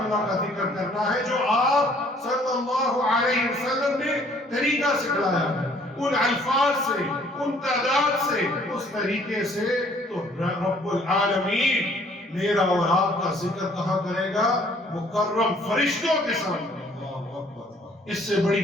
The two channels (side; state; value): both; normal; correlation 0.59